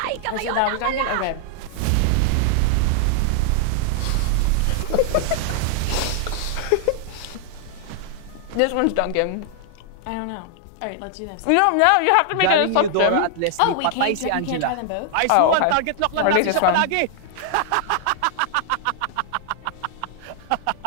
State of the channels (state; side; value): different; both; correlation 0.00